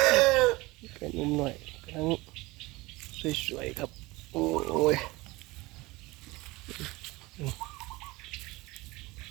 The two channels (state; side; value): quieter; left; 21.9 dB